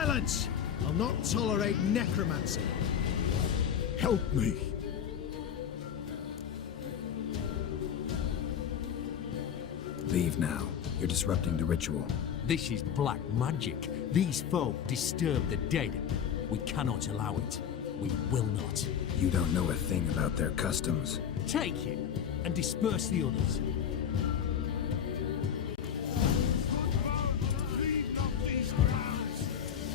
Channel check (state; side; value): quieter; right; 8.4 dB